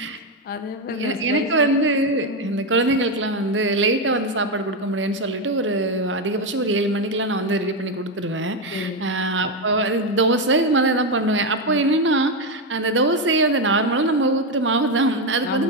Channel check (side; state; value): both; normal; correlation 0.09